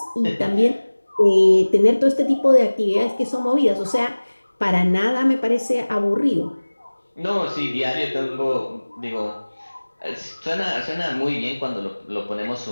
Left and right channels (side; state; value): both; inverted; correlation -1.00